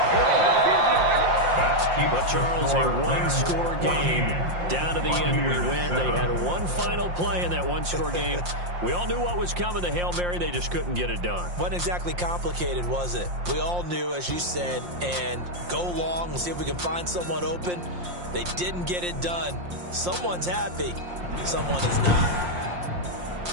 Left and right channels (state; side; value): late; left; 5.7 ms